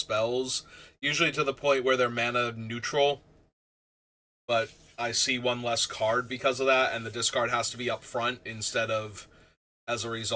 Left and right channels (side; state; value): both; identical; correlation 1.00